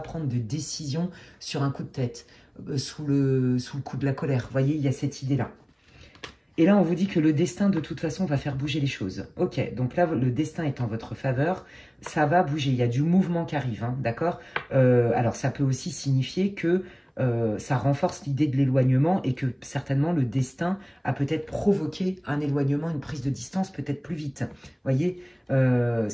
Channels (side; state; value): both; identical; correlation 1.00